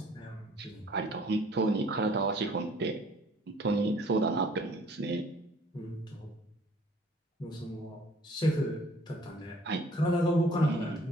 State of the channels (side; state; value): both; normal; correlation 0.55